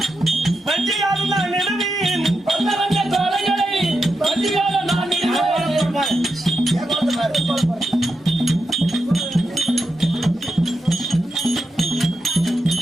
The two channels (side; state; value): both; normal; correlation 0.87